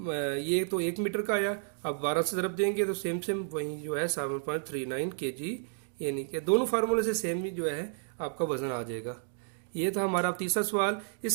ये तो 1 मीटर का आया, अब 12 से ज़रब देंगे तो सेम वही जो है 7.39 kg, यानी कि दोनों फार्मूले से सेम ही जो है आपका वजन आ जाएगा। ये था हमारा तीसरा सवाल।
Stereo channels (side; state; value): left; silent; 57 dB below the other